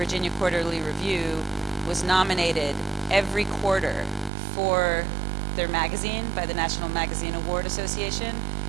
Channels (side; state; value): left; drops out; at 4.3 s